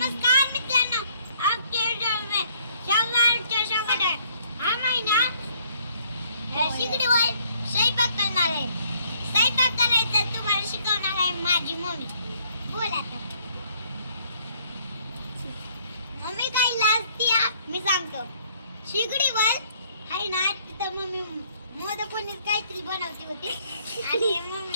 मित्रांनो, आपके व्हिडिओ में स्वागत है. हा महिना शिगडीवर स्वयंपाक करणार आहे. स्वयंपाक करायचा तुम्हाला शिकवणार आहे माझी मम्मी. बोला मम्मी काय लाजती मी सांगतो. शिगडीवर आहे ना तिथं मम्मी मोदक काहीतरी बनवती होती आणि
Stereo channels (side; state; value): both; inverted; correlation -0.64